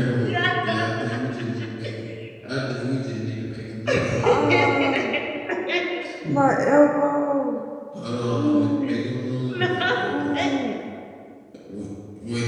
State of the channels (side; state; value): both; identical; correlation 1.00